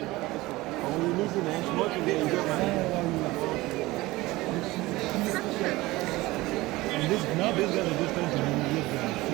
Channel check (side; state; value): left; quieter; 19.6 dB